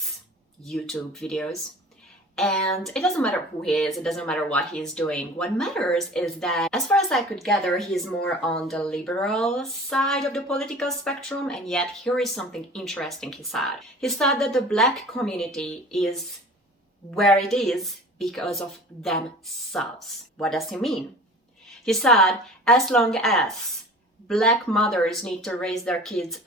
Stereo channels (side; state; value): both; normal; correlation 0.42